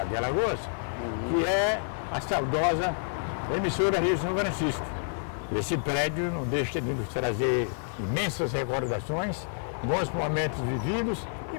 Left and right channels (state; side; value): silent; right; 56 dB below the other